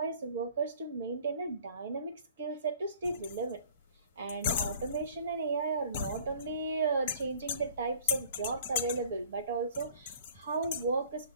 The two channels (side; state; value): both; inverted; correlation -0.52